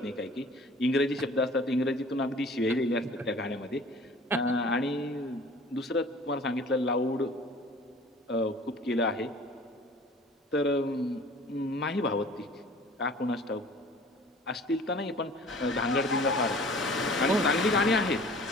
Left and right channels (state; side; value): normal; both; correlation 0.47